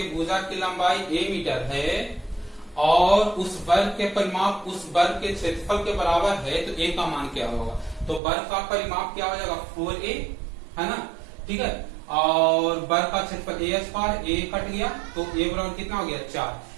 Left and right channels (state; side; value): drops out; left; at 8.2 s